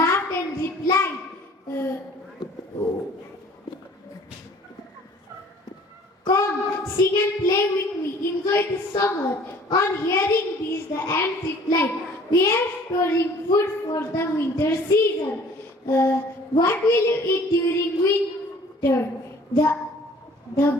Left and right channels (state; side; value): normal; both; correlation 0.52